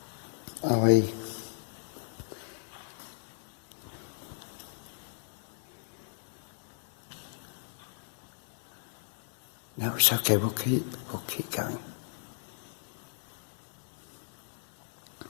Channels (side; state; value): right; silent; digital silence